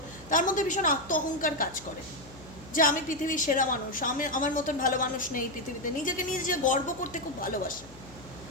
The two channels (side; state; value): left; noise; hum, 20 dB below the sound